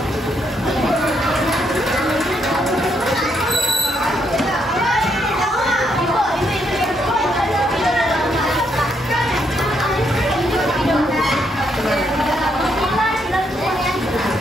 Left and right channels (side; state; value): both; normal; correlation 0.76